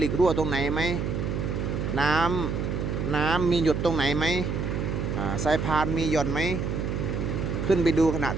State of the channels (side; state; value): right; noise; hum, 2 dB below the sound